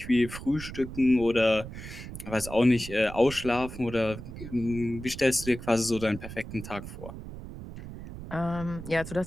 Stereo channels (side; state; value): right; noise; rumble, 11 dB below the sound